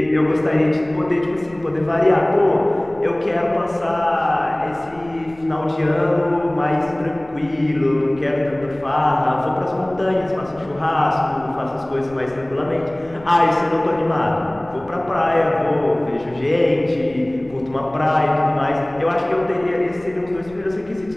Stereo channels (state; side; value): noise; left; rumble, 23 dB below the sound